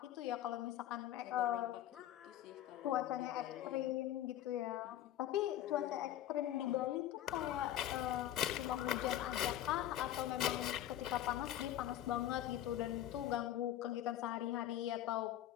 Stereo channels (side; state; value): right; quieter; 12.5 dB